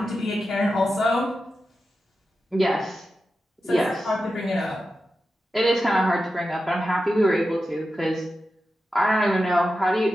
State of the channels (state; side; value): normal; both; correlation 0.91